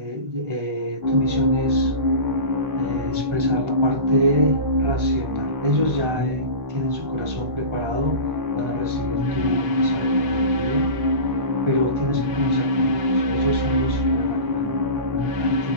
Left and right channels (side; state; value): left; late; 1.4 ms